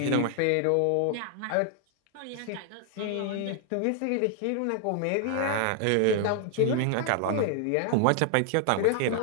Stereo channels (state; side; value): different; both; correlation 0.00